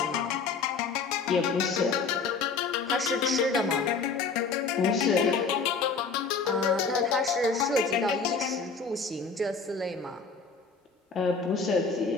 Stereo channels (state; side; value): quieter; right; 4.8 dB